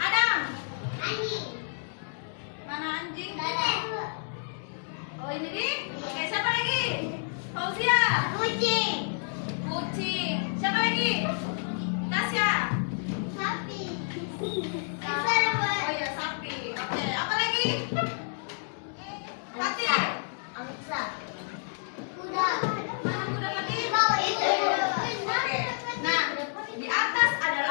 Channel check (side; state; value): right; silent; digital silence